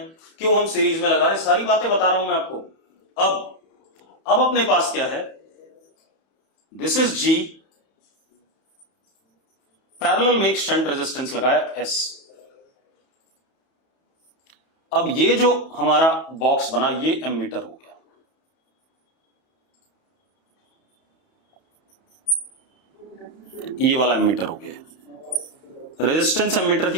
क्यों हम सीरीज में लगा रहे हैं, सारी बातें बता रहा हूं मैं आपको। अब अपने पास क्या है? दिस इज G, पैरेलल में एक शंट रेजिस्टेंस लगाया S। अब ये जो हमारा बॉक्स बना ये एमीटर हो गया। ये वाला एमीटर हो गया। रेजिस्टेंस एमीटर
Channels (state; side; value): late; right; 31 ms